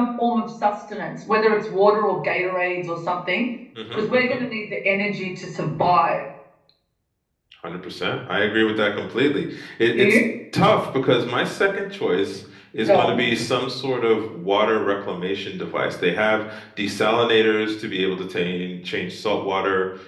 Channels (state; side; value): identical; both; correlation 1.00